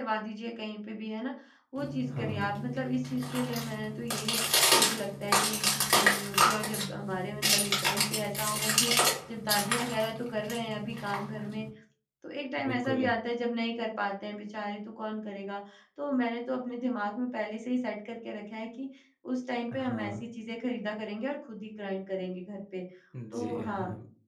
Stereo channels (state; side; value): identical; both; correlation 1.00